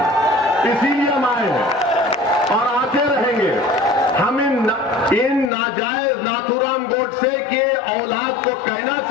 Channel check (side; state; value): right; drops out; at 5.5 s